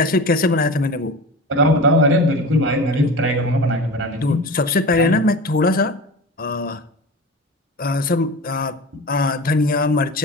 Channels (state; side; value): normal; both; correlation 0.32